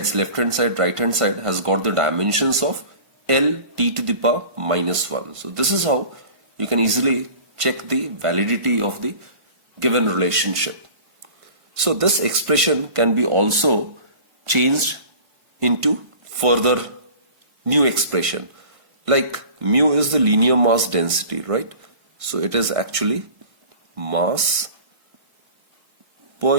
left hand side, right hand side, has got the dimensions of L t to the power minus 1. So this is how you can easily check the validity of the given relationship. So this expression can be also changed into further new expression. Like mu is the linear mass density, right? So it is actually mass per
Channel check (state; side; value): late; left; 1.5 ms